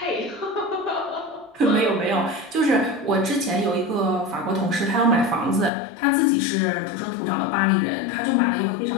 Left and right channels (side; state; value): right; drops out; at 5.7 s